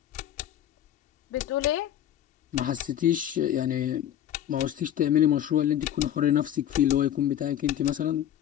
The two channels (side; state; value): right; quieter; 11.0 dB